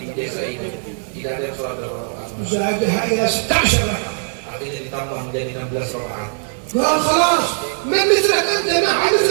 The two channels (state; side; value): silent; left; 64 dB below the other